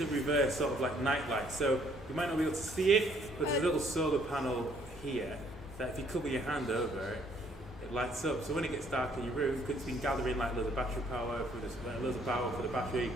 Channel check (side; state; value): both; normal; correlation 0.65